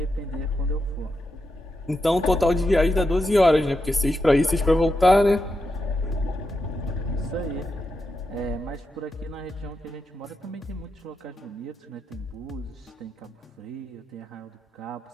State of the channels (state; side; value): normal; both; correlation 0.86